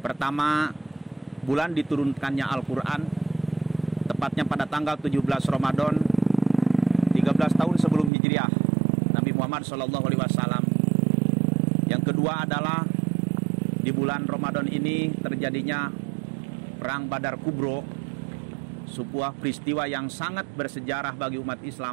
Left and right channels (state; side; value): drops out; left; at 8.1 s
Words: bulan diturunkannya Al-Quran, tepatnya pada tanggal 17 Ramadan 13 tahun sebelum Hijriah Nabi Muhammad SAW. Yang kedua adalah di bulan Ramadan ini terjadinya Perang Badar Kubro, sebuah peristiwa yang sangat bersejarah bagi umat